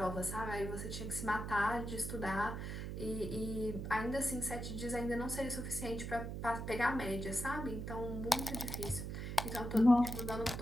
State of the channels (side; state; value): right; noise; hum, 5 dB below the sound